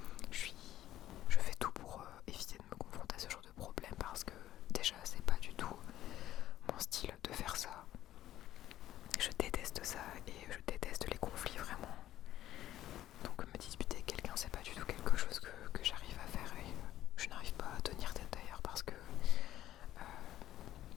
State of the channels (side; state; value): right; quieter; 13.2 dB